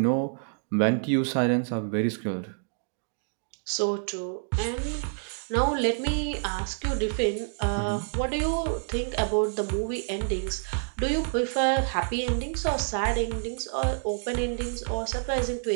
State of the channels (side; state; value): left; silent; digital silence